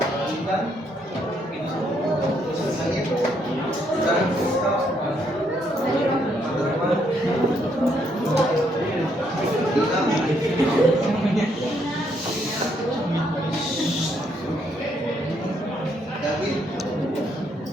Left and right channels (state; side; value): normal; both; correlation 0.73